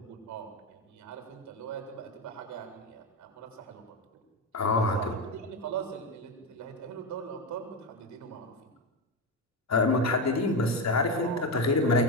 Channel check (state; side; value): normal; both; correlation 0.14